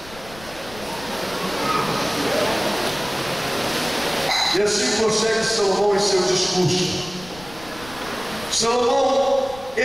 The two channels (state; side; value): noise; left; rumble, 19 dB below the sound